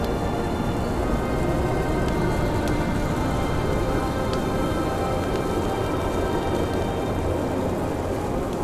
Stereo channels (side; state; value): both; identical; correlation 1.00